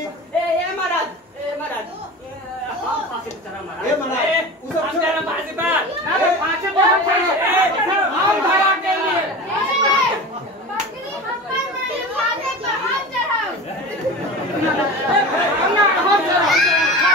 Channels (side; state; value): both; normal; correlation 0.32